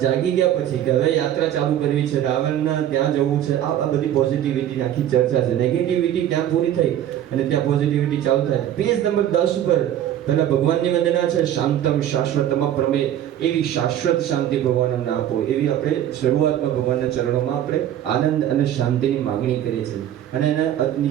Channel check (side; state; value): left; quieter; 11.2 dB